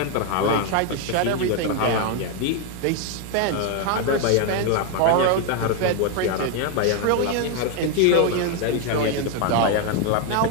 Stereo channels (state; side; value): different; both; correlation 0.01